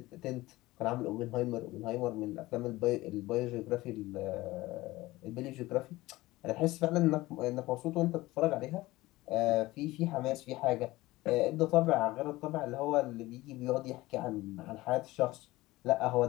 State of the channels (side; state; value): right; quieter; 18.8 dB